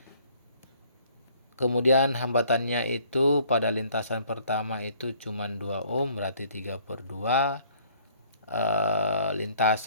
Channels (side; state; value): both; inverted; correlation -0.59